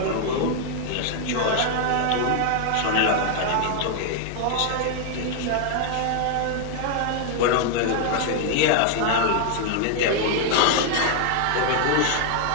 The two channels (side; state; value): both; different; correlation 0.00